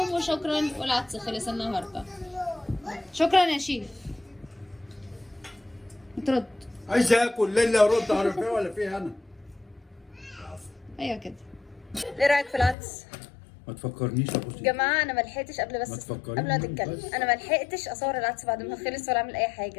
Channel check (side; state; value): right; drops out; at 12.8 s